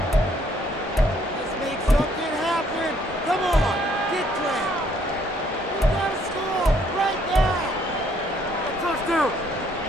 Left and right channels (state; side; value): normal; both; correlation 0.66